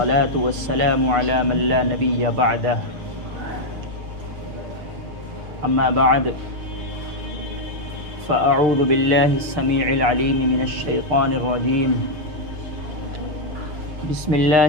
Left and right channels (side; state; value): left; late; 6.6 ms